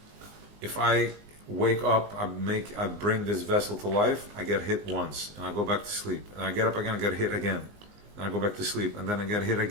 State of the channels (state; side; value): late; left; 19 ms